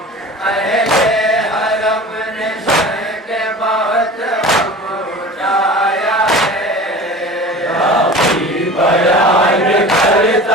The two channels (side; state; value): both; normal; correlation 0.38